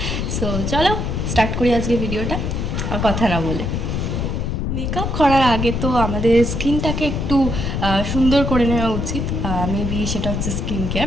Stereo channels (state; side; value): noise; left; rumble, 1 dB below the sound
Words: সো চলো স্টার্ট করি আজকে ভিডিওটা, আর কথা না বলে। মেকআপ করার আগে তো আমাদের স্কিনটাকে একটু সুন্দর করে নেওয়া উচিত। মেবি সেটা হচ্ছে স্কিন কেয়ার,